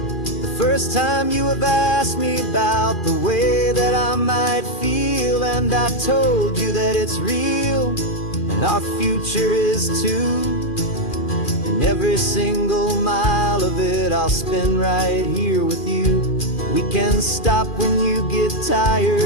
first time you have asked me about the way that I might feel, and I told you that it's real. and our future is too. And every single mile of it I'll spend right here with you. We can stop when you get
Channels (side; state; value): right; late; 2.4 ms